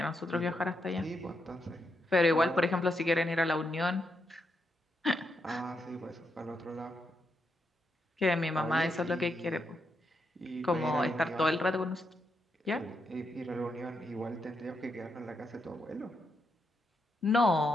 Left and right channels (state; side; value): normal; both; correlation 0.81